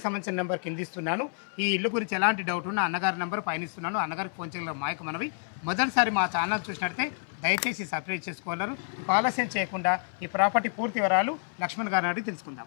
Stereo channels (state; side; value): silent; right; 59 dB below the other